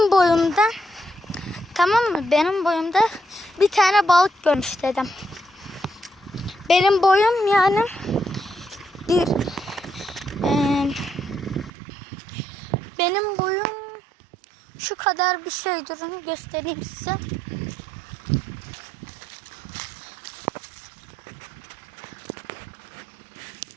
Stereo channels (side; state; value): left; drops out; at 11.7 s